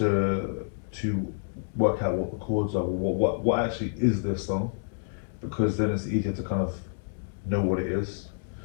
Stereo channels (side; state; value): right; silent; digital silence